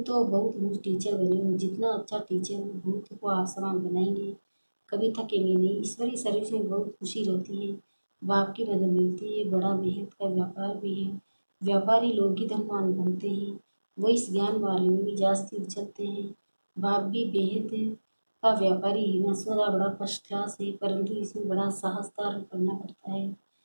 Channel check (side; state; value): both; inverted; correlation -1.00